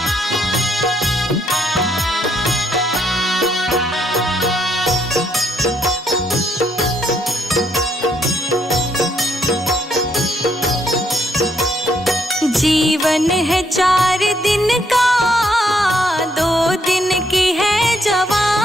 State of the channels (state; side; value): normal; both; correlation 0.72